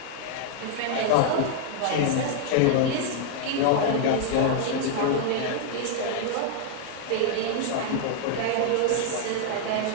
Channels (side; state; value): both; different; correlation 0.00